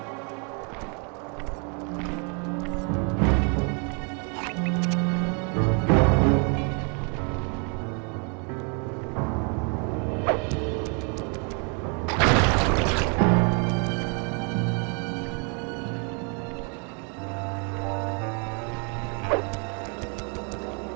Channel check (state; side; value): quieter; left; 36.5 dB